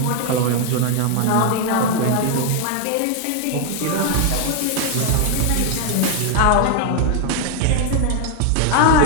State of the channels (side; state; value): both; different; correlation 0.00